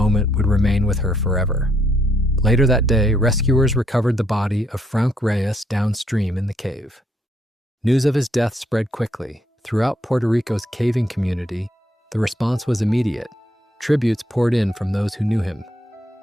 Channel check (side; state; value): both; normal; correlation 0.72